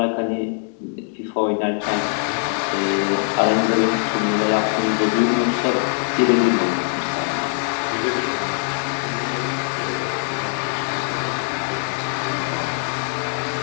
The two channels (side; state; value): right; silent; 57 dB below the other